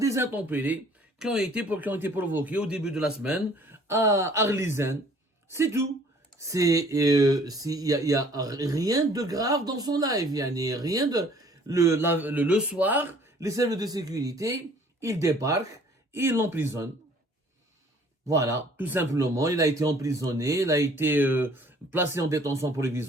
intempéries qui ont été provoqués au début de la semaine à Arlizen. C'est tout. Il y a rien de grave dans son live. Il y a rien de, le soir, les services de sécurité, ils débarquent, ils l'emprisonnent. Voilà, tout simplement, il a été emprisonné, il a été placé en détention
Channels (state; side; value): normal; both; correlation 0.55